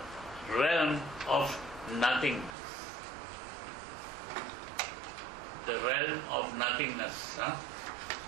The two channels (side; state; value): left; drops out; at 2.6 s